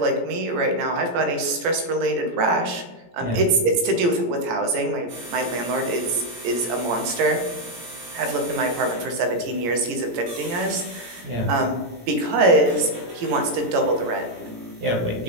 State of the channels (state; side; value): late; left; 17 ms